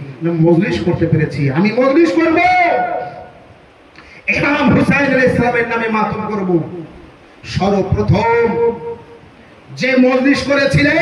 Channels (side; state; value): both; identical; correlation 1.00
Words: না মজলিস করতে পেরেছি। আমি মজলিস করব, ইমাম হুসাইন আলাইহিস সালামের নামে মাতম করব। সর্বপ্রথম যে মজলিস